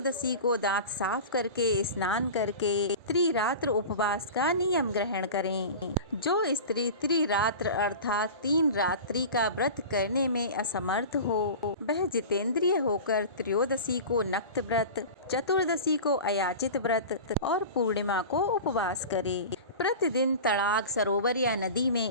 को दांत साफ करके स्नान करके त्रिरात्र उपवास का नियम ग्रहण करें। जो स्त्री त्रिरात्र अर्थात 3 रात्रि का व्रत करने में असमर्थ हो वह जितेंद्रिय होकर त्रयोदशी को नक्त व्रत, चतुर्दशी को अयाचित व्रत और पूर्णिमा को उपवास करे। प्रतिदिन तड़ाग, सरोवर या नदी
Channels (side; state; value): both; inverted; correlation -0.33